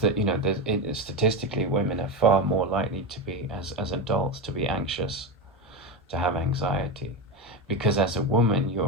statistically women are far more likely to be, as adults, to be anxious, to have anxiety, because as a woman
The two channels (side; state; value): both; normal; correlation 0.16